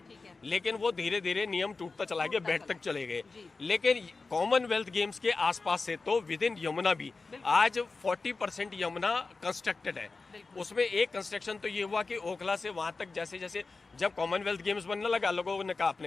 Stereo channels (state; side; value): quieter; right; 4.0 dB